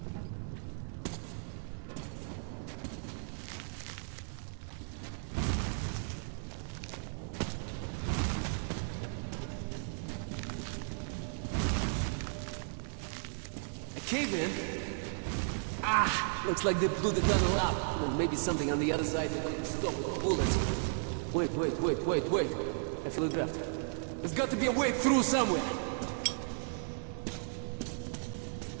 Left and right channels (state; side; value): silent; left; digital silence